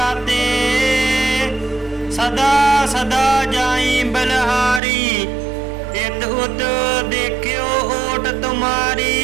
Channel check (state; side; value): drops out; left; at 4.8 s